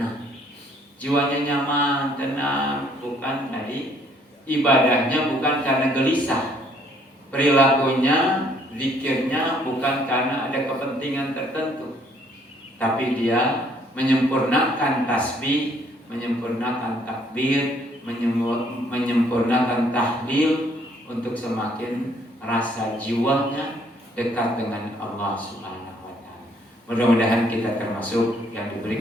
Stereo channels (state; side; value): normal; both; correlation 0.64